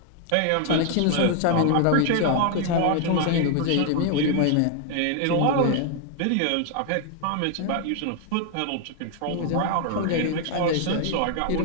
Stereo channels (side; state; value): both; different; correlation 0.00